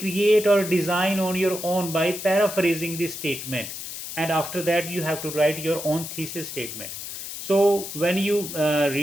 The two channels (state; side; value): noise; left; hiss, 8 dB below the sound